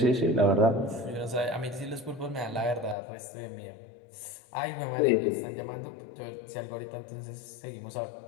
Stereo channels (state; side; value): drops out; right; at 3.0 s